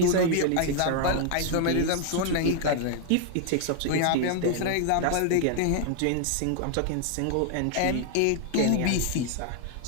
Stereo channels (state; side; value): different; both; correlation 0.00